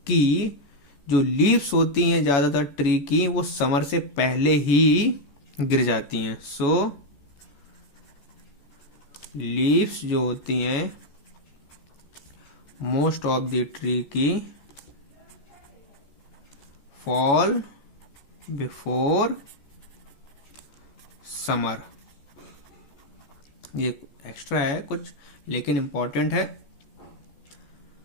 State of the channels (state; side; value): late; right; 14 ms